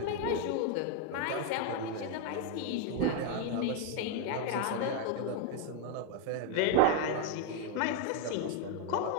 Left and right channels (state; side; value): different; both; correlation 0.01